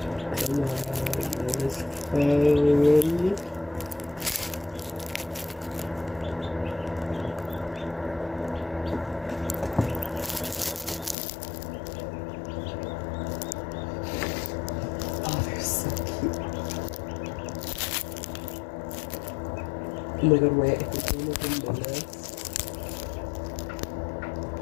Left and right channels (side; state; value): right; drops out; at 11.2 s